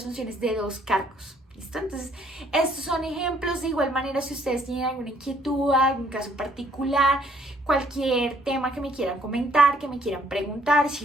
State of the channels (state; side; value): normal; both; correlation 0.64